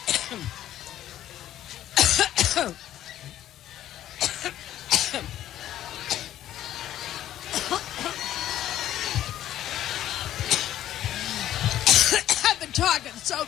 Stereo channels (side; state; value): right; quieter; 12.4 dB